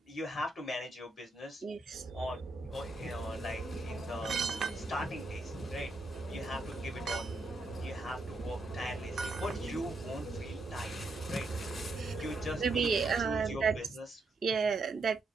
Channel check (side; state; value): left; quieter; 3.0 dB